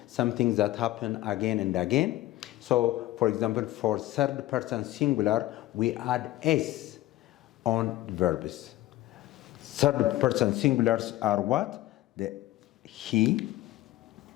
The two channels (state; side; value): quieter; right; 16.0 dB